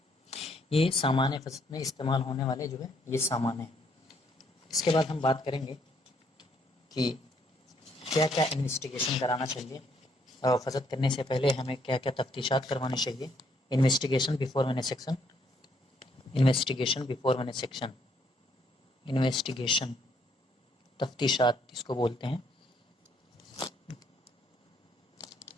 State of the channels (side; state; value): both; normal; correlation 0.69